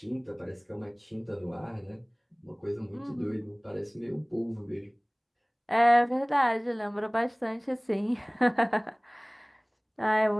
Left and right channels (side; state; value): both; identical; correlation 1.00